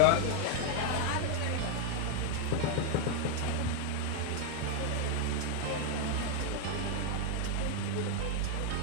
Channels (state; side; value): different; both; correlation 0.01